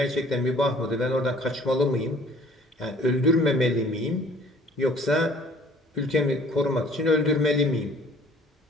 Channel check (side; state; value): both; normal; correlation 0.54